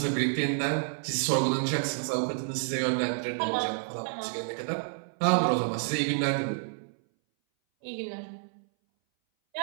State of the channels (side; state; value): left; silent; 58 dB below the other